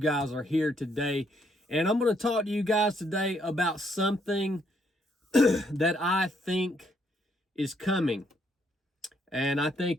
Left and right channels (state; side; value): normal; both; correlation 0.72